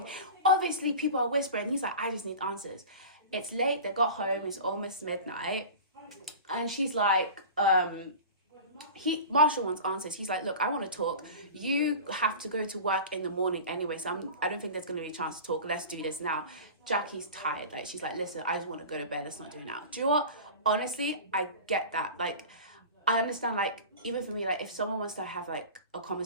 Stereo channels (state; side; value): inverted; both; correlation -0.34